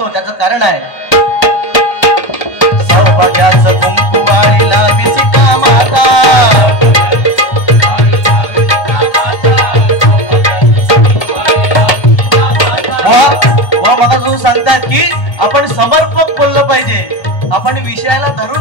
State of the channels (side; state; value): right; late; 1.3 ms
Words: त्याचं कारण आहे. सौभाग्याचं कुंकू वाढीला विसिता माता, सांगतात की आपण समर्पक बोललं पाहिजे, आपण विषयाला